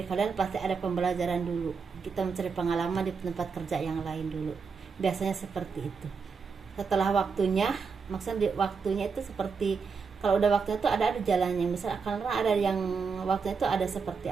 kalian pasti ada pembelajaran dulu. Kita mencari pengalaman di tempat kerja yang lain dulu. Biasanya seperti itu. Setelah waktunya, maksudnya waktunya itu seperti kalau udah waktunya itu ada jalannya. Misal karena ada yang waktunya itu ada seperti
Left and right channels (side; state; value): left; quieter; 5.3 dB